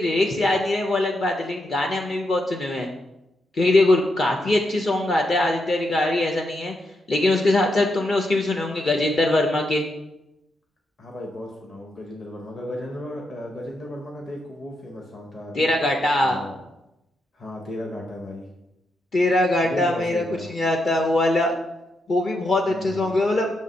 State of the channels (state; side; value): normal; both; correlation 0.82